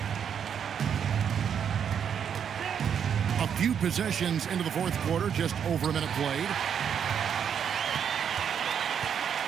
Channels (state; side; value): quieter; left; 8.0 dB